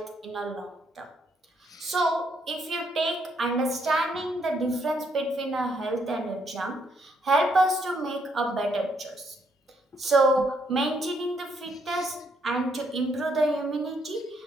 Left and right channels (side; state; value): both; normal; correlation 0.73